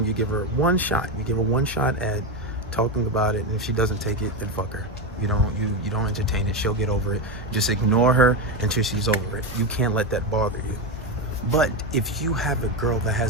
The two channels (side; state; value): both; normal; correlation 0.12